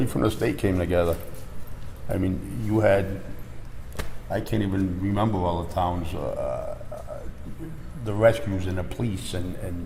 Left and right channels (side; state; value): both; identical; correlation 1.00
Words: from the state came together. I mean, you had, I can't even remember all the towns, the rescues and the police